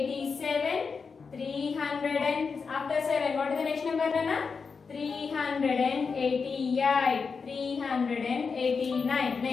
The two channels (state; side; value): quieter; right; 5.2 dB